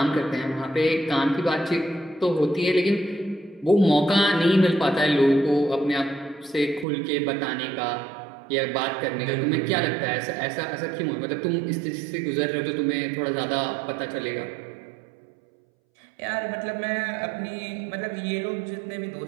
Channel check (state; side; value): drops out; left; at 6.9 s